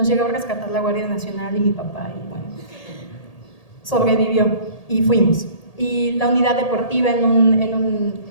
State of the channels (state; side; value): late; right; 1.8 ms